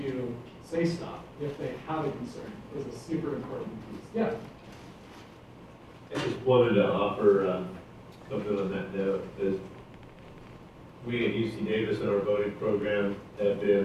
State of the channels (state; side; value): identical; both; correlation 1.00